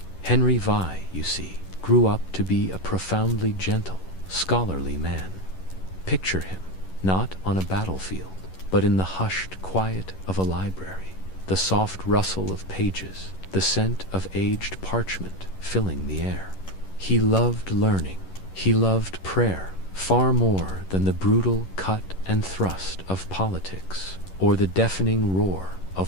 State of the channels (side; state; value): right; late; 11 ms